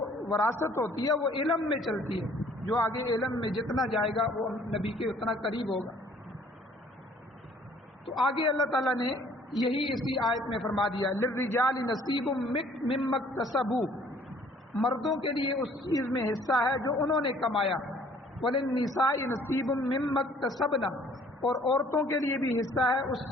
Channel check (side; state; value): both; normal; correlation 0.57